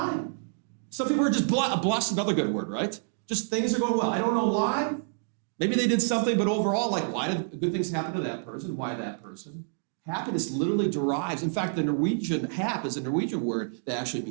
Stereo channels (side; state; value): left; silent; digital silence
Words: Some people are just blessed, another good word, right? Just things are going well. I don't know why. Maybe they did something, but overall, like why did good things happen to that person? Why that person? Happiness literally derives. In fact, the Norwegian hap is a Norwegian word that actually